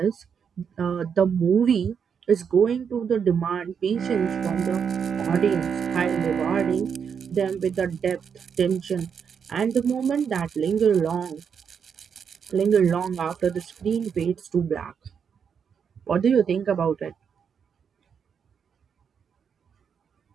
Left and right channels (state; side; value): quieter; left; 7.0 dB